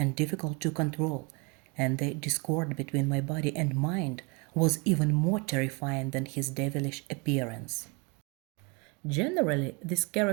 difficult to control, and the discord between my body and mind was even more terrifying than his devilish appearance. Generally, this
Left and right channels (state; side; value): quieter; left; 29.9 dB